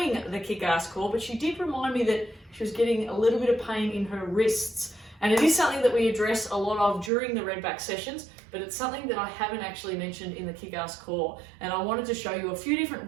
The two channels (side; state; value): left; drops out; at 7.1 s